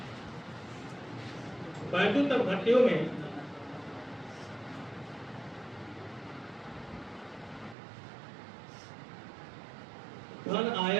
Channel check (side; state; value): left; drops out; at 7.8 s